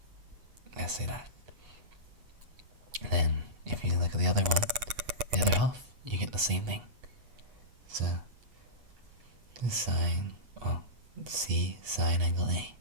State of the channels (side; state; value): left; late; 8.2 ms